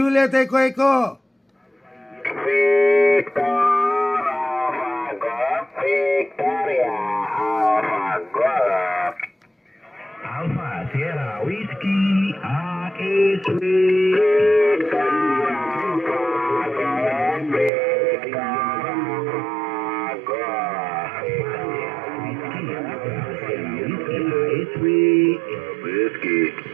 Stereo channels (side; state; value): left; drops out; at 17.7 s